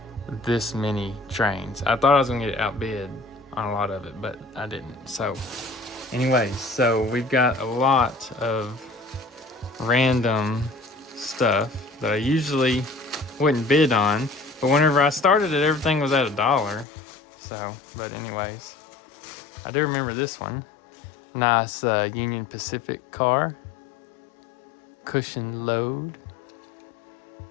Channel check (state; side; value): drops out; right; at 16.9 s